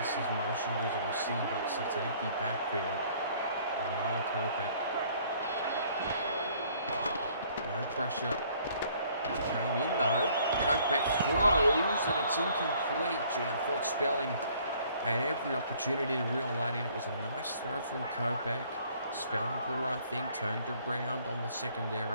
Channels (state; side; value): inverted; both; correlation -0.59